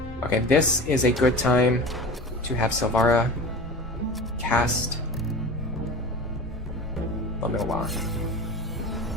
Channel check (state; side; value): normal; both; correlation 0.33